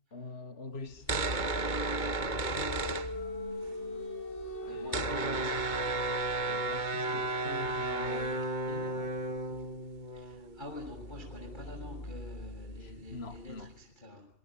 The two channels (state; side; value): late; right; 2.8 ms